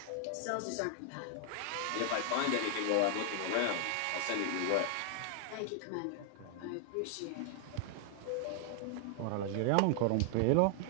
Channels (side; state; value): both; different; correlation 0.00